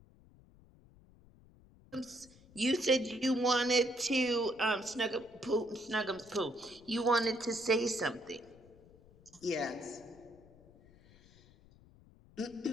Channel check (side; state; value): left; noise; rumble, 25 dB below the sound